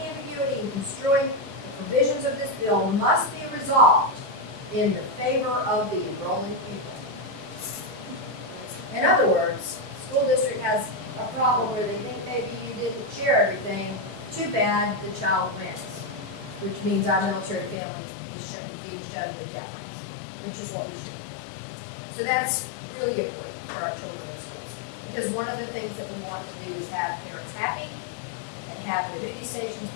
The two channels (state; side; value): drops out; right; at 17.8 s